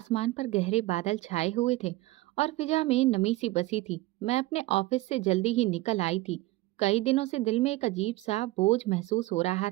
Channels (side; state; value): left; quieter; 19.2 dB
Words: पर गहरे बादल छाए हुए थे और फिजा में नमी सी बसी थी। मैं अपने ऑफिस से जल्दी ही निकल आई थी। कई दिनों से दिल में एक अजीब सा बोझ महसूस हो रहा